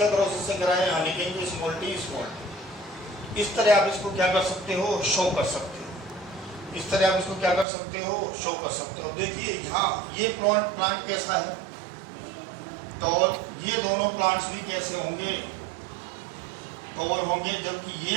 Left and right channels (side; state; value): left; drops out; at 7.7 s